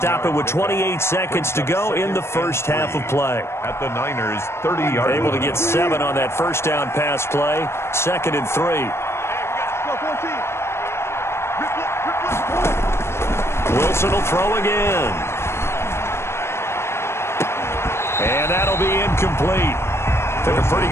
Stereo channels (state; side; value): late; right; 0.12 ms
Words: it with 28 seconds to go in the first half of play. At the Niners' 30-yard line. Able to get 7 on that first down pass play. 2nd and 3. Wilson will throw again. And that'll be incomplete. Took a pretty